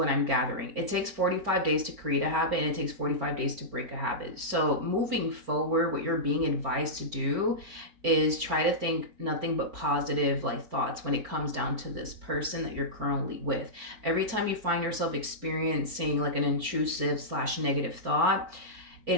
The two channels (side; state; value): left; late; 4.4 ms